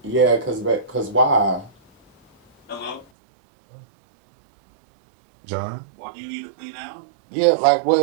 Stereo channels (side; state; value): left; drops out; at 3.1 s